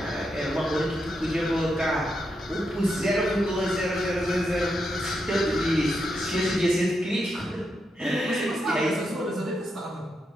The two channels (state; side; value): normal; both; correlation 0.84